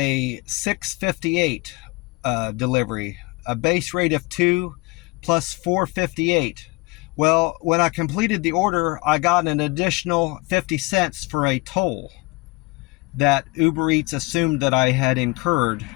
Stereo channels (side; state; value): right; quieter; 25.4 dB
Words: $6.58 delivery, a base rate of $2 plus $4.58. Well, when I completed the order, I got an additional 50 cents for a toll that Uber Eats assumed that I had incurred